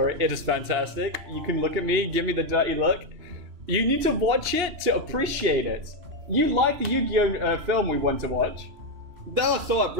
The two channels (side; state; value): left; late; 2.9 ms